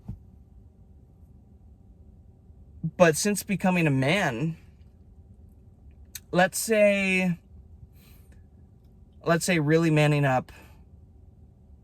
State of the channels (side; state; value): both; identical; correlation 1.00